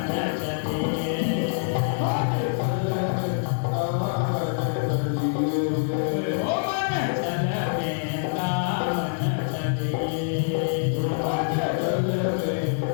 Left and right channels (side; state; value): right; silent; digital silence